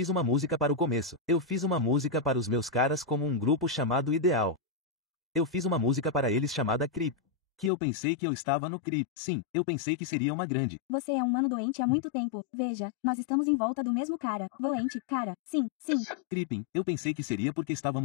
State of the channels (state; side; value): drops out; right; at 7.7 s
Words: uma música para o começo. Eu fiz uma música para os meus caras como um grupo chamado Ideal. Eu fiz uma música para eles chamada Creep. Que eu pensei que eu estava no Creep. Sim, eu pensei que seria uma grande. Você é um mano doente há muito tempo. Veja, nós estamos em volta do mesmo cara. Doente, cara. Sim, sim. Creeping, eu pensei que seria porque